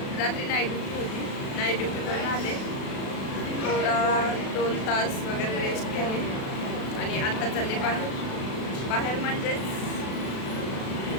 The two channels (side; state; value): right; late; 36 ms